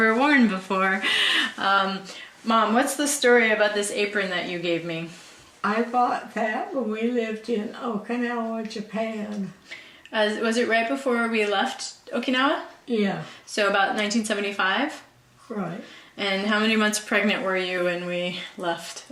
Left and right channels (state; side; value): identical; both; correlation 1.00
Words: worn before. Mom, what's the story about this apron that you gave me? I bought that when we lived in Okinawa, Japan. Was it right before we left Okinawa? Yeah. So about 1975? Right. And how many months pregnant were you when we left